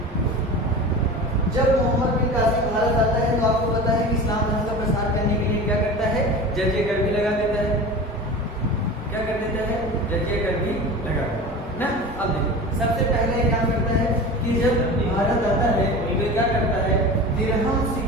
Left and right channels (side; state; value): both; normal; correlation 0.33